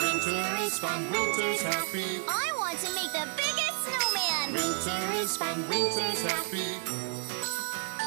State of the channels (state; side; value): silent; left; 57 dB below the other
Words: is fun, winter's happy. I want to make the biggest snowman. Winter is fun, winter's happy.